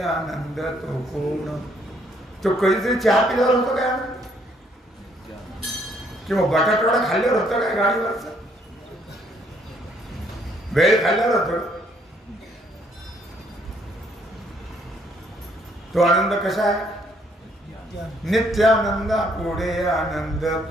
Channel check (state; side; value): normal; both; correlation 0.67